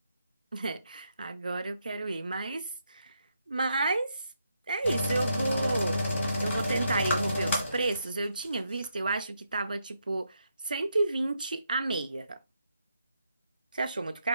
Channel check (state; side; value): inverted; both; correlation -0.80